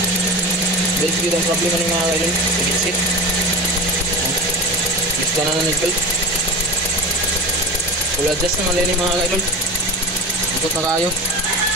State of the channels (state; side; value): normal; both; correlation 0.29